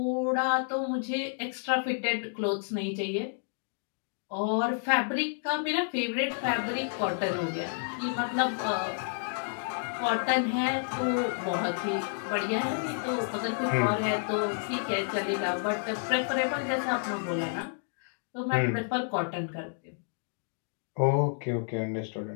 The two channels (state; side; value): silent; right; digital silence